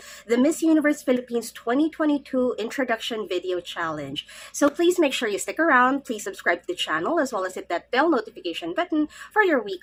the Miss Universe Philippines 2022 Introduction Video Challenge. So please make sure you stick around, please subscribe to the channel, as well as hit that bell notification button for your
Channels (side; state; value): both; identical; correlation 1.00